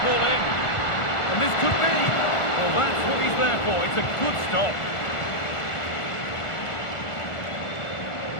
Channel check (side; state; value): right; late; 1.4 ms